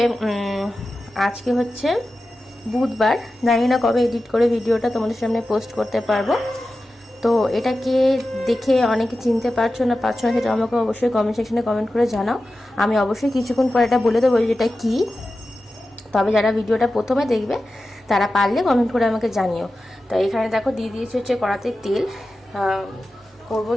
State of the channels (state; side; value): normal; both; correlation 0.93